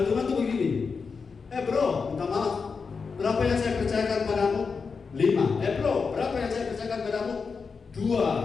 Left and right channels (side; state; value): right; quieter; 5.1 dB